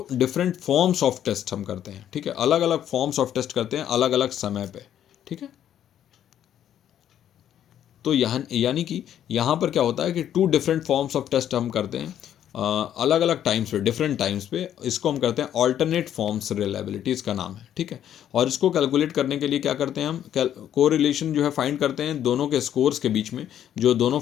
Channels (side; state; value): right; quieter; 10.5 dB